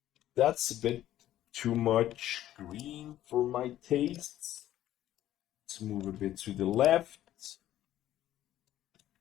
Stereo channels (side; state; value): right; quieter; 13.1 dB